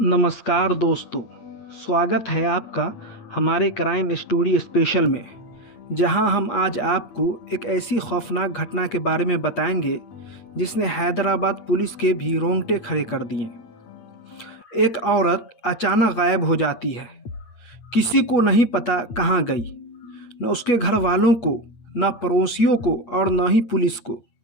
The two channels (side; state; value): right; late; 8.7 ms